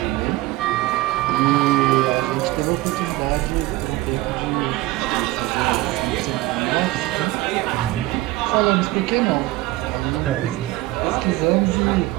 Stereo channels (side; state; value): left; quieter; 18.5 dB